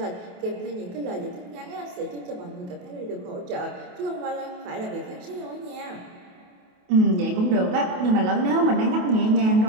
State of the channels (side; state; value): left; late; 28 ms